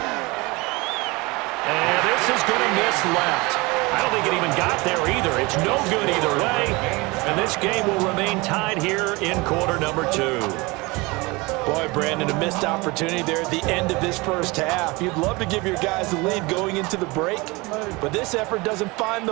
And this is going to miss left. I don't think it even got there either. It's no good either way. And this game will remain tied here in quarter number 2. Boy, Brandon, a missed opportunity there at the end of this first half. You'd love to give your guys the lead going into the break, but this effort doesn't find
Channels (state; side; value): quieter; left; 24.5 dB